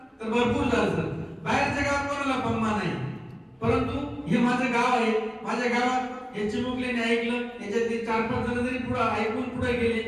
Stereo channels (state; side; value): identical; both; correlation 1.00